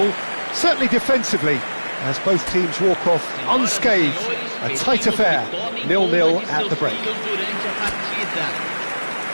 certainly defensively, as both teams walk off unscathed. A tight affair, 0-0 at the break.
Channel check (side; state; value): both; inverted; correlation -1.00